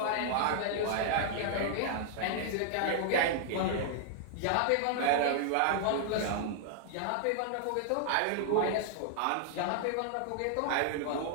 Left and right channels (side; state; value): both; different; correlation -0.01